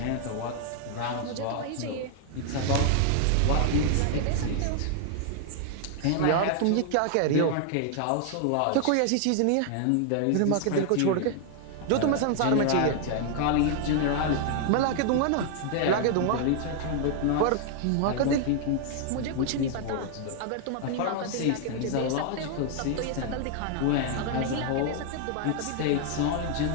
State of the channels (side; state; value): both; different; correlation 0.00